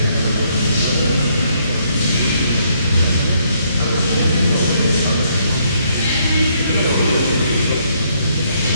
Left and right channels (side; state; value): both; inverted; correlation -0.71